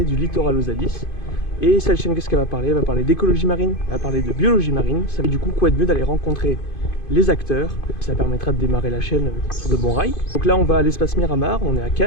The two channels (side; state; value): right; late; 2.5 ms